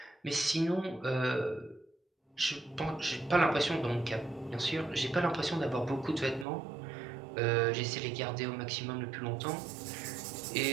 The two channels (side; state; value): left; drops out; at 6.5 s